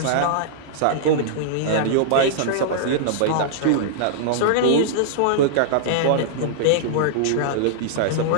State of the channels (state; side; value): different; both; correlation -0.01